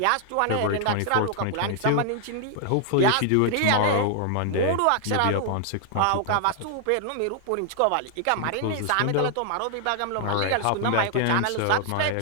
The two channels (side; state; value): both; different; correlation 0.00